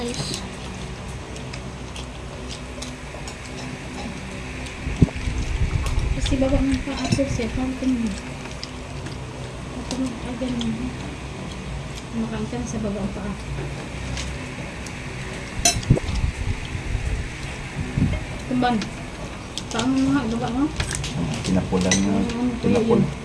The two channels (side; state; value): both; identical; correlation 1.00